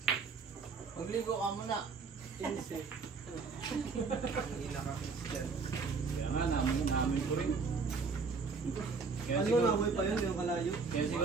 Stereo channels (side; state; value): left; quieter; 4.7 dB